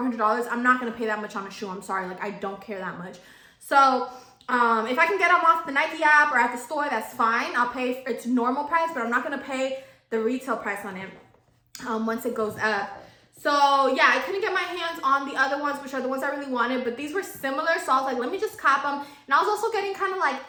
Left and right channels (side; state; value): both; identical; correlation 1.00